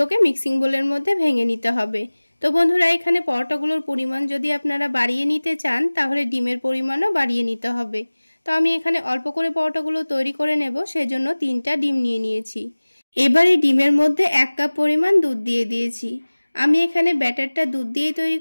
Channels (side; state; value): both; inverted; correlation -1.00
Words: মিক্সিং বোলের মধ্যে ভেঙে নিতে হবে। তো বন্ধুরা, এখানে পরোটাগুলোর পরিমাণ যদি আপনারা বাড়িয়ে নিতে চান তাহলে ডিমের পরিমাণও বাড়িয়ে নিতে হবে। তো আমি এখানে অল্প করে পরোটাগুলো তৈরি করে নেব, সেজন্য 3টা ডিম নিয়ে নিয়েছি। এবার এই ডিমের মধ্যে 1 কাপ পরিমাণ দুধ দিয়ে দিয়েছি। আমি এখানে ব্যাটারটা দুধ দিয়েই তৈরি